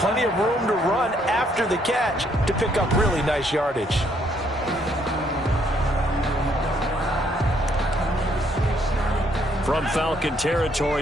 of room to run after the catch to pick up really nice yardage. From Falcon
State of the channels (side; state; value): both; normal; correlation 0.69